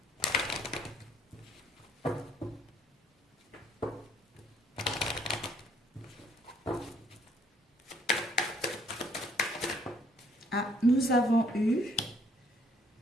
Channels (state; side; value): normal; both; correlation 0.64